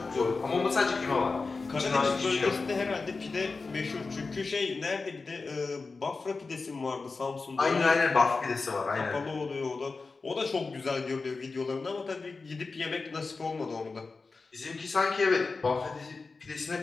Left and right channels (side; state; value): right; quieter; 4.1 dB